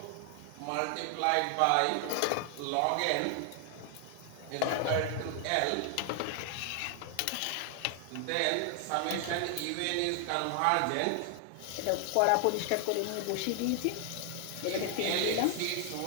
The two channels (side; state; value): both; different; correlation 0.00